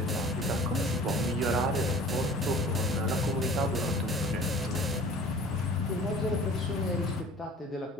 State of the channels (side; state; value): both; normal; correlation 0.46